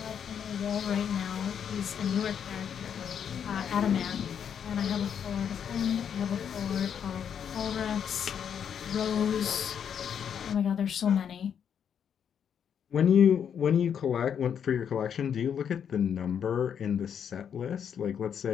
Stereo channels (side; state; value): right; quieter; 8.1 dB